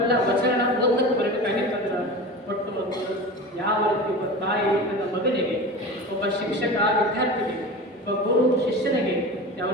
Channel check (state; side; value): normal; both; correlation 0.31